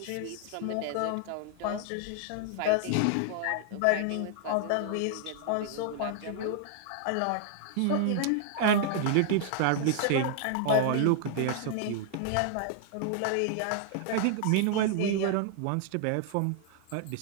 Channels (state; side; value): different; both; correlation 0.00